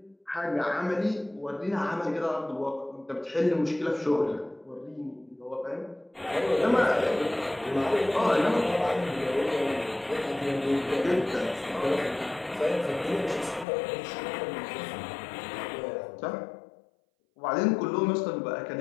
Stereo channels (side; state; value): right; drops out; at 13.7 s